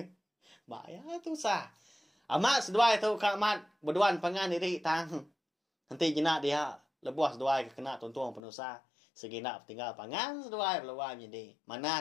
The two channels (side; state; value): right; drops out; at 8.4 s